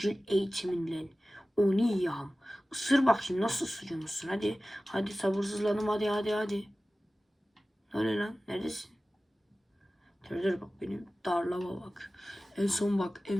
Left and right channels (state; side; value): normal; both; correlation 0.96